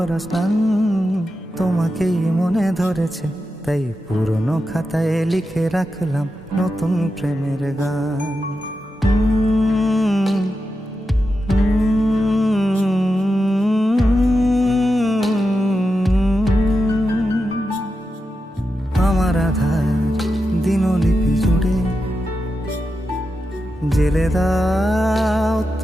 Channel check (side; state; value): both; normal; correlation 0.89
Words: স্নান। তোমাকেই মনে ধরেছে, তাই পুরনো খাতায় লিখে রাখলাম নতুন প্রেমের গান। আমার আধার দিনলিপি জুড়ে জেলে দাও